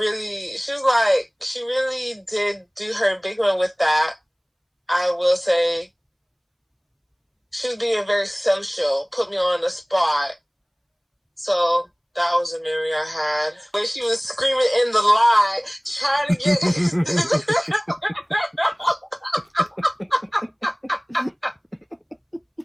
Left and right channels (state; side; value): identical; both; correlation 1.00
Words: she really did do her big one with that. I will say she was being very social, put me on the spot. So that was a memory I had. When she was screaming in the line, trying to get...